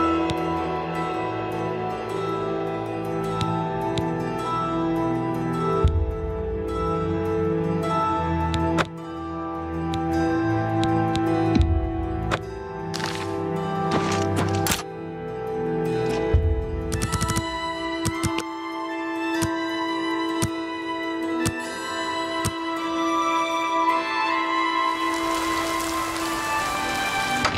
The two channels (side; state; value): both; identical; correlation 1.00